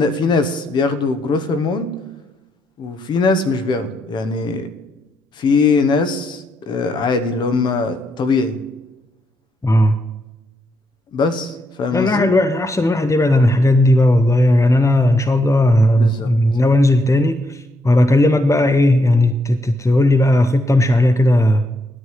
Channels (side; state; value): both; normal; correlation 0.79